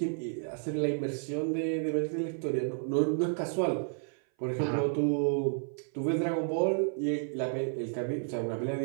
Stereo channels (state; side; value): silent; left; 56 dB below the other